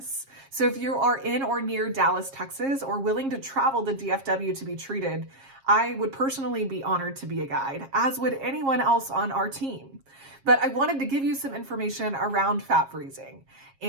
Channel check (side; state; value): left; late; 7.4 ms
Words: So if you are in or near Dallas, Texas, or willing to travel to DFW to be treated, I would personally be honored to be a guide, as would anyone else on our team. But I wanted to give you some information around fat freezing